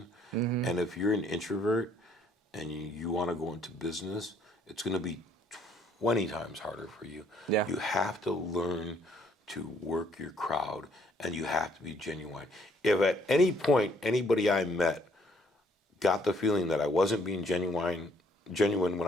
And if you're an introvert and you want to go into business, it's going to be 20 times harder for you. Yeah. You have to learn to work your crowd, and you have to be genuine. If at any point anybody I met got the feeling that I wasn't being genuine when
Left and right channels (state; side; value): normal; both; correlation 0.65